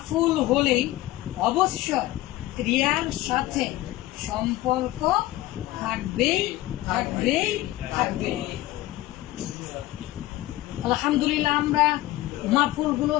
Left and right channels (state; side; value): quieter; right; 16.8 dB